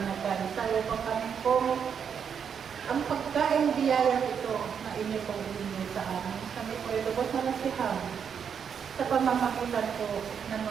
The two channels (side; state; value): left; quieter; 7.3 dB